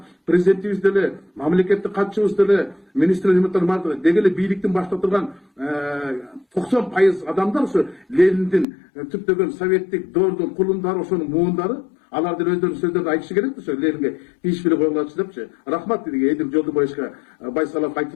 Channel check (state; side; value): drops out; right; at 8.7 s